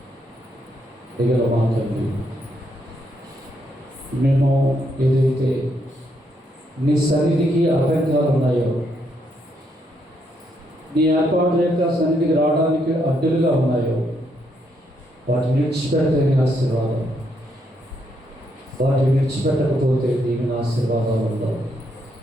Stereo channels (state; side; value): normal; both; correlation 0.76